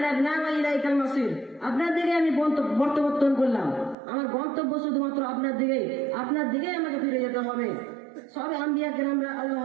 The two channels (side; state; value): left; drops out; at 4.0 s